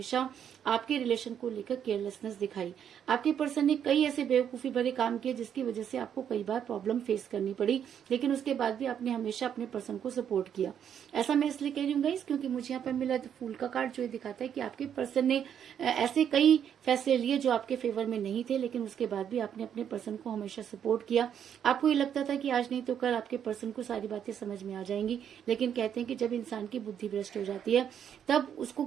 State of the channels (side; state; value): left; quieter; 8.8 dB